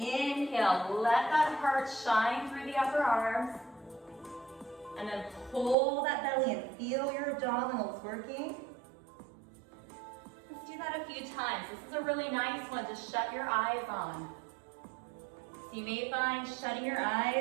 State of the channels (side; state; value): left; drops out; at 5.8 s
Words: let that heart shine through the upper arms. And then pull that belly and feel your abdominals working. Let's do that a few times. This is a really nice one to shut your eyes on. So you may find shutting your